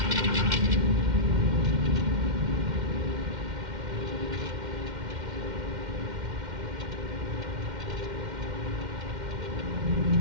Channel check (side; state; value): left; late; 2.1 ms